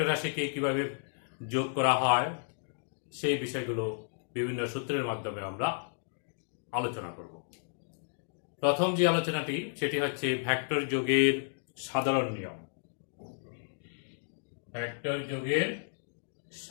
রাশিকে কিভাবে যোগ করা হয় সেই বিষয়গুলো বিভিন্ন সূত্রের মাধ্যমে আমরা আলোচনা করব। প্রথম যে আলোচনাটি সেটি হচ্ছে ভেক্টর যোগের সাধারণ নিয়ম। ভেক্টর যোগের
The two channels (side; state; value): right; silent; digital silence